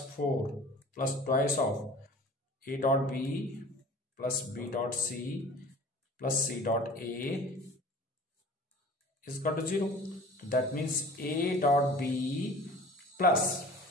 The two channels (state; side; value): normal; both; correlation 0.43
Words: 4 plus twice of A dot B plus B dot C plus C dot A is equal to 0. तो that means A dot B plus